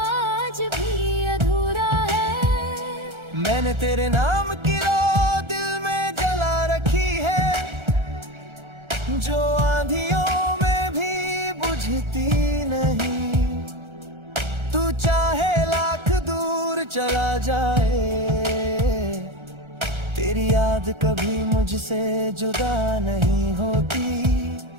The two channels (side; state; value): left; late; 1.3 ms